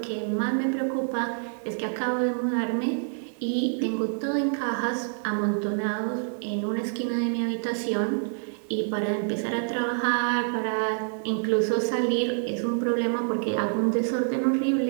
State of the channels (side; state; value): left; silent; 60 dB below the other